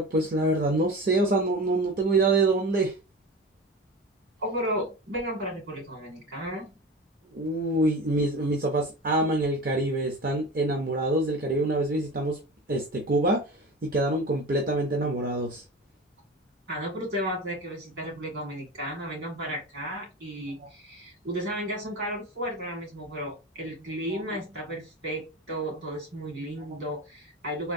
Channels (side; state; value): both; normal; correlation 0.31